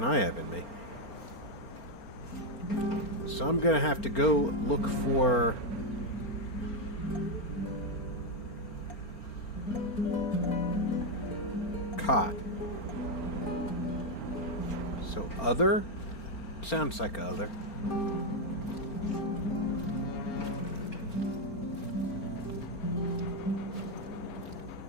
I have in me. So I'm gonna have to go look for... cot. So other? Sounds like other.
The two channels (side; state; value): right; late; 4.4 ms